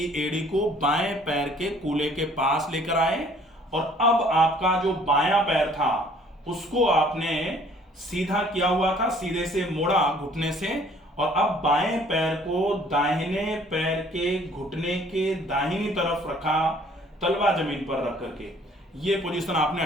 एड़ी को बाएं पैर के कूल्हे के पास लेकर आए और अब आपका जो बायां पैर था उसको आपने सीधा किया हुआ था, सीधे से मोड़ा घुटने से, और अब बाएं पैर को दाहिने पैर के घुटने के दाहिनी तरफ रखा, तलवा जमीन पर रख करके ये पोजीशन आपने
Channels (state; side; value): normal; both; correlation 0.57